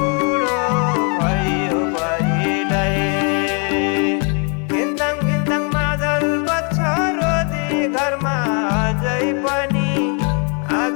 भयो बढीलाई। घिन्ताङ घिन्ताङ मादल बज्छ रोदी घरमा अझै पनि,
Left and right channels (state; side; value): quieter; right; 35.8 dB